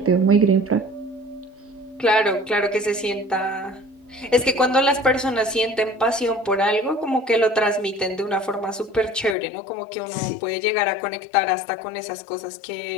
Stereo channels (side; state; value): right; drops out; at 9.3 s